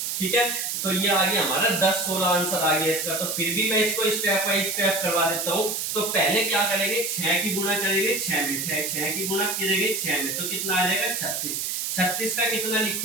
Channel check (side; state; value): right; noise; hiss, 2 dB below the sound